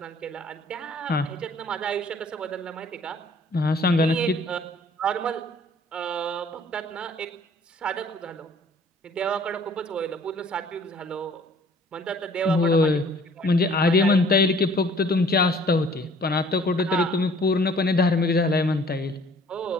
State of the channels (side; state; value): both; normal; correlation 0.54